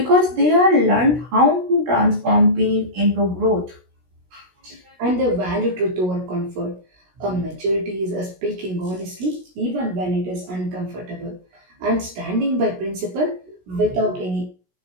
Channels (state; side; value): late; left; 16 ms